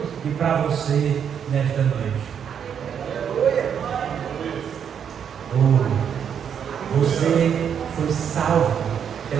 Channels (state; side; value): quieter; left; 8.0 dB